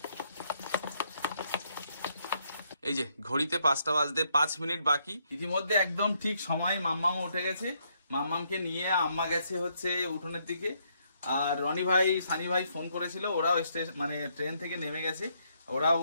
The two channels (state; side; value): inverted; both; correlation -0.74